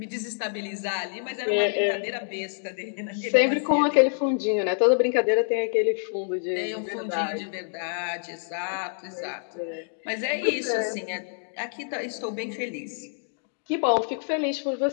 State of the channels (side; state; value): right; silent; digital silence